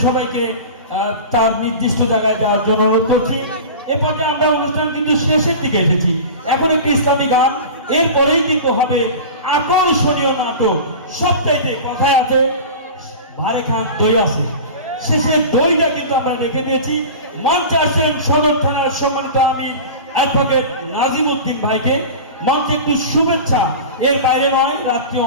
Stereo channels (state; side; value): inverted; both; correlation -0.32